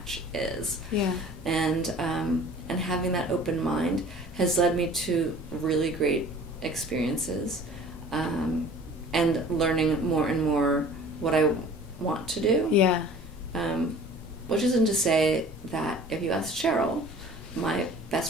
is. Yeah. And having that open mind has led me to really great experiences, and learning more and more what I want to do. Yeah. Which isn't to say that if you ask Cheryl, my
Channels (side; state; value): both; normal; correlation 0.46